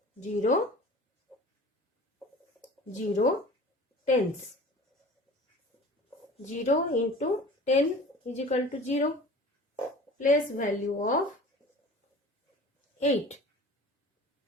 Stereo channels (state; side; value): normal; both; correlation 0.42